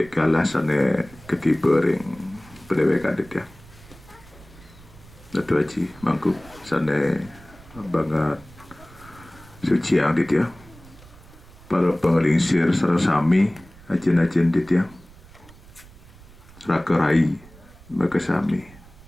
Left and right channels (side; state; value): right; noise; rumble, 22 dB below the sound